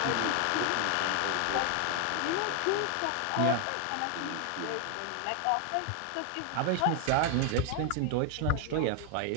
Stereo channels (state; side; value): different; both; correlation 0.00